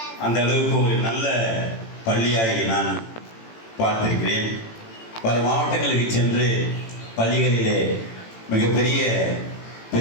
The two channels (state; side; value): late; right; 18 ms